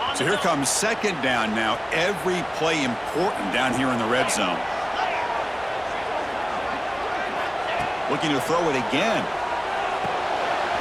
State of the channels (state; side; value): identical; both; correlation 1.00